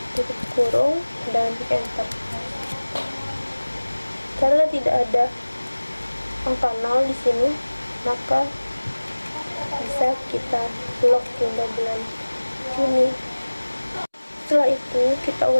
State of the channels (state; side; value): inverted; both; correlation -1.00